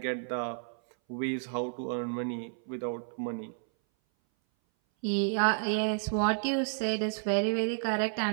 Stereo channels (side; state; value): left; silent; 57 dB below the other